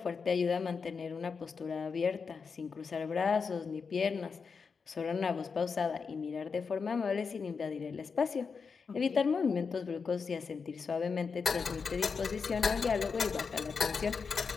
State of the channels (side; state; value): right; quieter; 5.4 dB